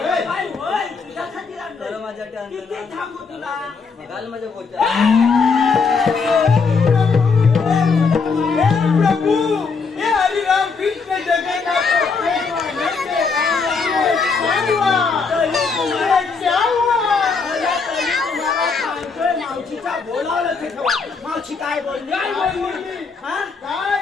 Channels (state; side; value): quieter; right; 4.9 dB